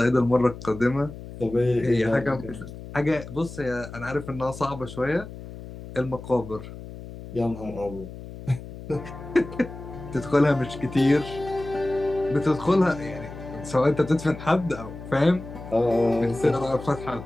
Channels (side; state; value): left; noise; hum, 13 dB below the sound